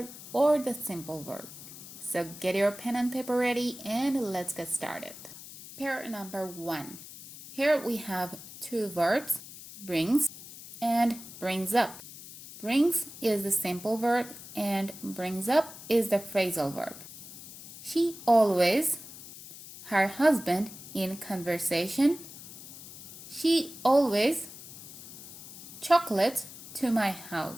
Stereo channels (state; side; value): noise; left; hiss, 15 dB below the sound